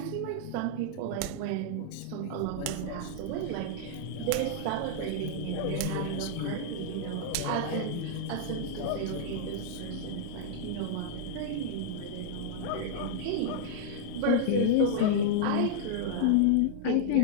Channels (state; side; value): different; both; correlation -0.01